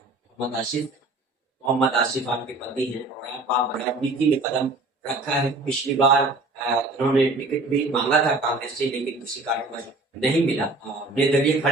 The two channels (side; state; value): left; quieter; 3.1 dB